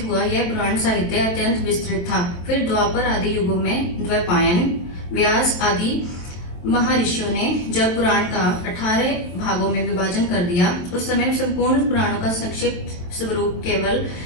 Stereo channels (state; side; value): late; right; 23 ms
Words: हुआ यह पुराण साहित्य अत्यंत विस्तृत था। फिर द्वापर आदि युगों में द्वैपायन, व्यास आदि महर्षियों ने जब पुराण का 18 भागों में विभाजन कर दिया, उस समय संपूर्ण पुराणों का संक्षिप्त स्वरूप केवल